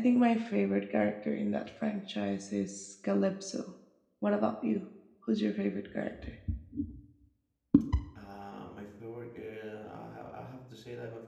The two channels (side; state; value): both; identical; correlation 1.00